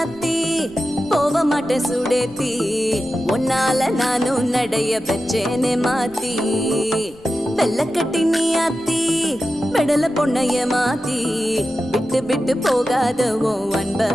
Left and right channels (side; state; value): left; noise; rumble, 24 dB below the sound